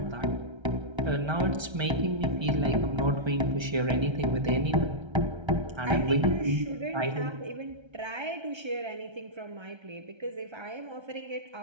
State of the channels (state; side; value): late; left; 1.3 ms